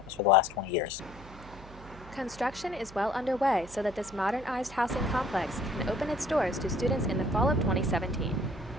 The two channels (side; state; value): right; noise; hum, 18 dB below the sound